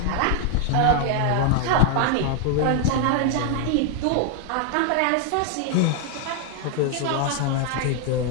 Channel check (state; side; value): different; both; correlation 0.00